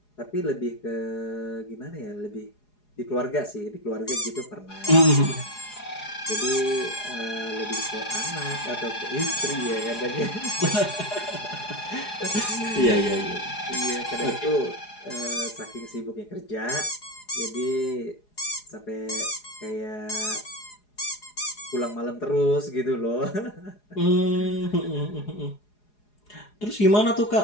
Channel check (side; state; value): right; late; 4.8 ms